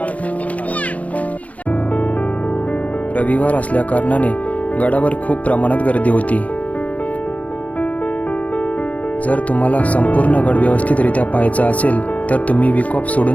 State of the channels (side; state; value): right; late; 0.067 ms